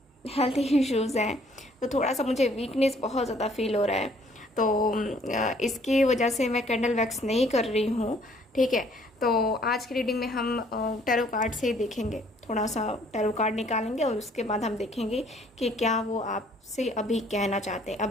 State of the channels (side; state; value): both; normal; correlation 0.61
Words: हेल्थ इश्यूज़ हैं, तो थोड़ा सा मुझे वीकनेस बहुत ज़्यादा फील हो रहा है, तो इसकी वजह से मैं कैंडल वैक्स नहीं कर रही हूँ। ठीक है, तो आज की रीडिंग में हम टैरो कार्ड से ही देखेंगे, थोड़ा सा टैरो कार्ड निकालेंगे और उसके बाद हम देखेंगे कि क्या वो आपसे अभी कहना चाहते हैं।